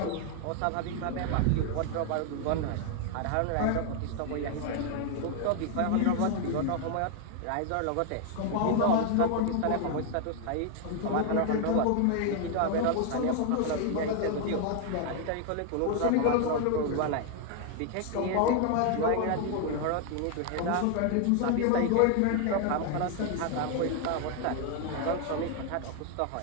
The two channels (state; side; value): different; both; correlation 0.00